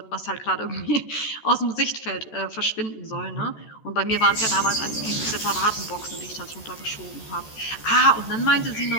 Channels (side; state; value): right; late; 14 ms